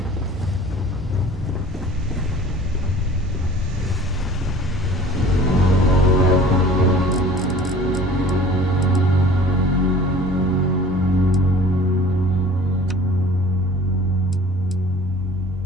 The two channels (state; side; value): normal; both; correlation 0.46